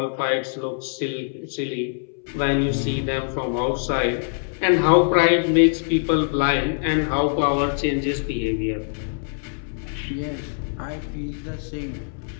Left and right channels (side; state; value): right; silent; 63 dB below the other